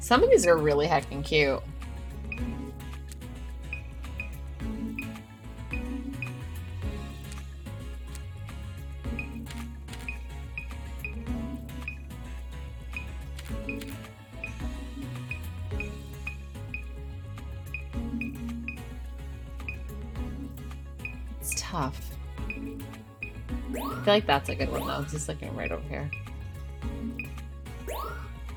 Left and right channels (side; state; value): both; identical; correlation 1.00